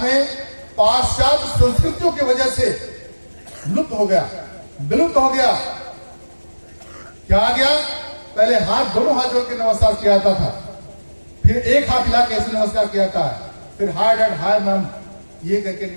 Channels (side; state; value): both; inverted; correlation -1.00